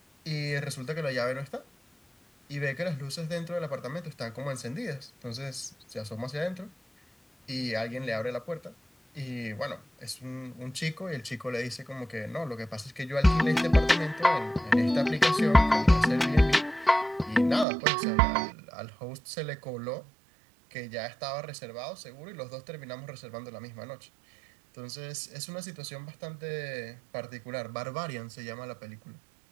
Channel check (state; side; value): drops out; left; at 17.7 s